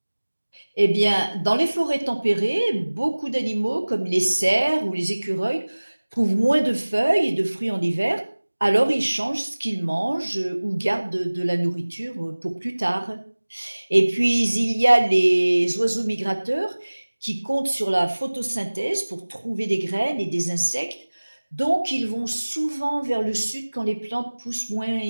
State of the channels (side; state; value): both; inverted; correlation -1.00